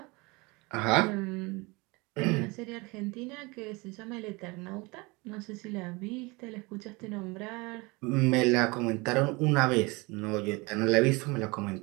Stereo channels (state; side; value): quieter; left; 25.7 dB